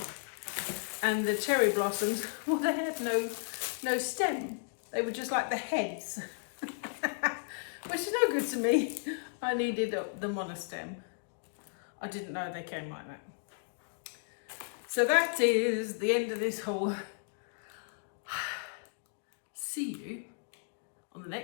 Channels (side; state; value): right; silent; digital silence